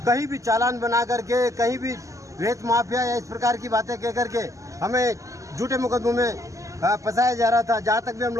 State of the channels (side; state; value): left; late; 0.16 ms